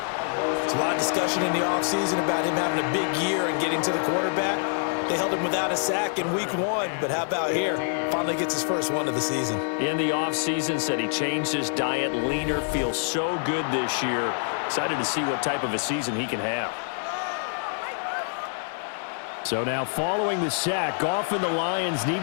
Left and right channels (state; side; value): silent; right; 61 dB below the other